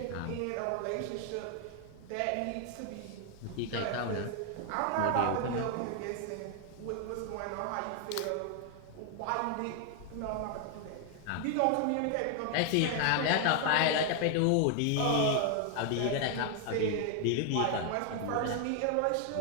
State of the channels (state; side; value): different; both; correlation 0.00